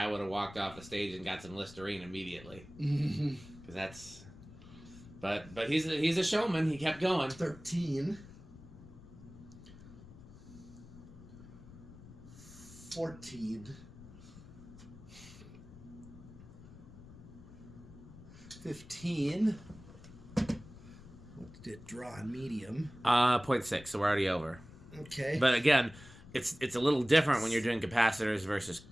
would have walked off the stage and got some Listerine immediately. Because that's. But he's a showman. He kept going. 13. 14. 15. What did it draw on medium? 0.6, so we're already over. Okay. But again, it's a little different when you're doing capacitors versus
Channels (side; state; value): left; noise; rumble, 18 dB below the sound